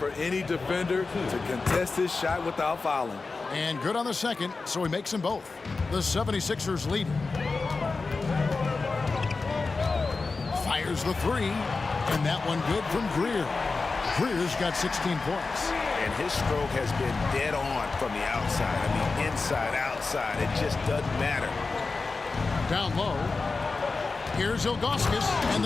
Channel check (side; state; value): right; quieter; 4.0 dB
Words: any defender to contest his shot without fouling. And good on the second, so he makes them both. The 76ers lead. Fires the 3, and that one good from Greer. Greer's got 16 points. And his stroke has been dead on from the outside. I mean, inside, outside. It just doesn't matter. Down low. Here's Ilgauskas, and